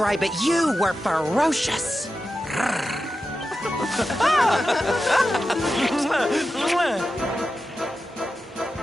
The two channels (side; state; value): both; normal; correlation 0.91